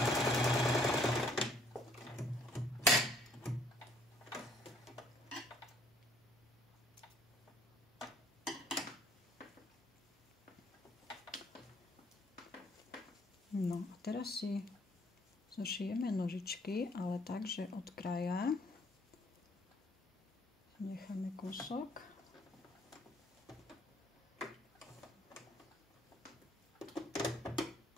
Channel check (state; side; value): normal; both; correlation 0.63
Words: No a teraz si zošijeme nožičky, ale tak, že od kraja necháme kúsok.